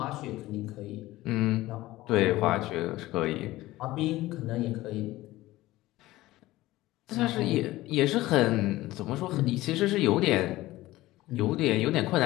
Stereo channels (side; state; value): right; quieter; 17.4 dB